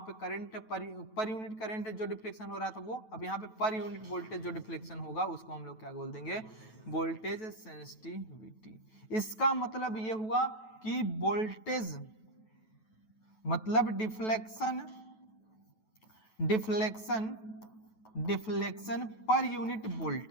पे करंट पर यूनिट करंट जो डिफ्लेक्शन हो रहा था वो, अब यहाँ पे पर यूनिट वोल्टेज जो डिफ्लेक्शन होगा उसको हम लोग क्या बोल देंगे? Voltage sensitivity. इसका मतलब ये हुआ कि वोल्टेज मतलब डिफ्लेक्शन पर यूनिट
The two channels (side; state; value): right; late; 9.2 ms